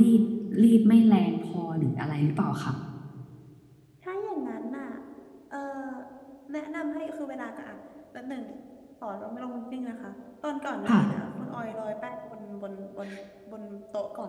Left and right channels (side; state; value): both; identical; correlation 1.00